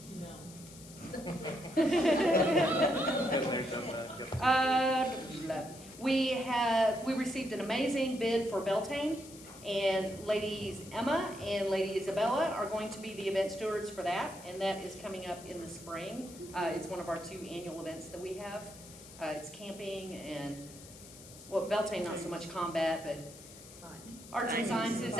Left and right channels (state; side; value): noise; left; hiss, 18 dB below the sound